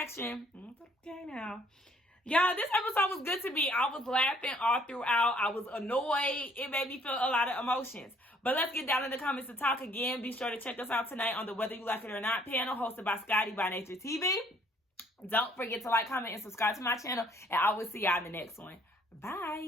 Okay, now. Y'all, this episode was good to me. I was laughing all throughout. I was annoyed. It made me feel a lot of emotions. But let's get down in the comments to talk again. Be sure to check us out tonight on the Whether You Like It or Not panel hosted by Scotty by Nature TV. Don't forget to like, comment, and subscribe to my channel. And I will see y'all in the next one.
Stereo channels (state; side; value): normal; both; correlation 0.62